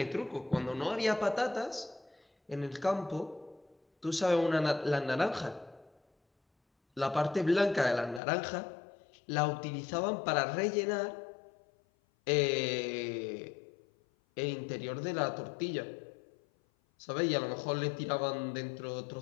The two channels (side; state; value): right; drops out; at 8.2 s